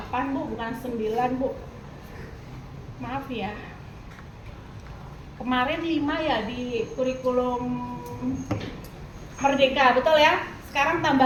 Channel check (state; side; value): identical; both; correlation 1.00